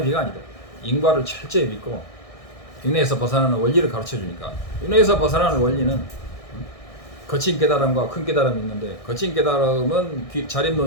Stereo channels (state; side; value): late; right; 1.6 ms